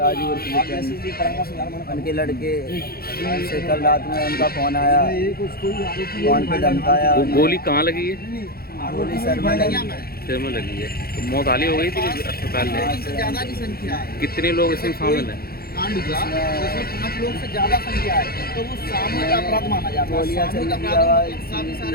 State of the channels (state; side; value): late; right; 0.44 ms